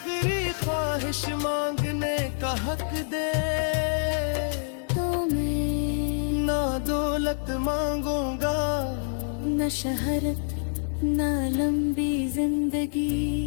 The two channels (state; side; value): silent; right; 60 dB below the other